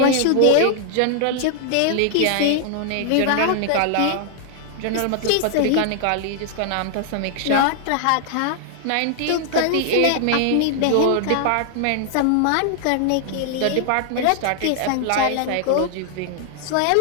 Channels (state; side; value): different; both; correlation 0.00